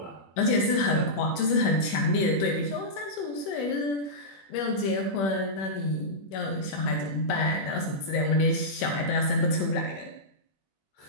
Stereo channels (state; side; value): late; right; 21 ms